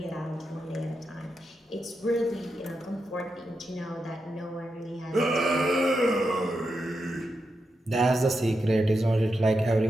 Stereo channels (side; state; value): both; normal; correlation 0.87